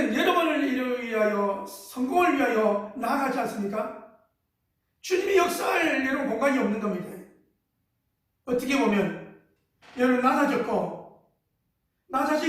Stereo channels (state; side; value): identical; both; correlation 1.00